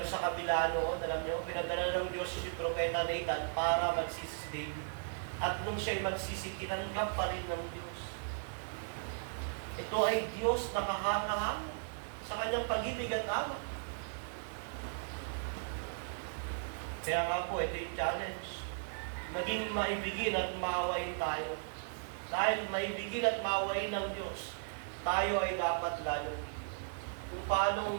sa kabila noon, alam niyo, pinadala ng Diyos si Propeta Nathan para magsisi si David. At nung siya'y magsisi, kinanggap pa rin ng Diyos. Ito ay Diyos na kahanga-hanga sa kanyang pag-ibig at awa. Kaya nga po, ito yung challenge. Naging maibigin at maawain tayo. Dahil maibigin at maawain ng Diyos, tayo ay dapat galong. Kung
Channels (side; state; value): left; silent; digital silence